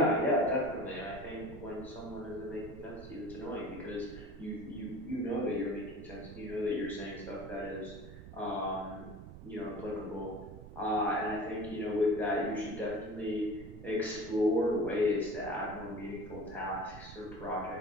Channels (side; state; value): right; noise; rumble, 13 dB below the sound